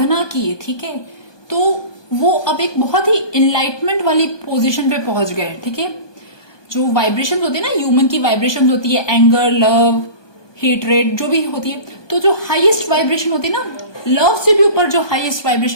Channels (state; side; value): late; right; 1.2 ms